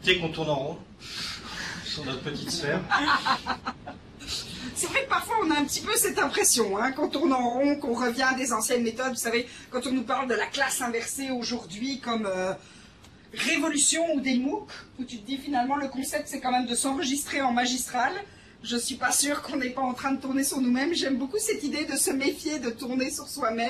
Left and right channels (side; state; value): both; identical; correlation 1.00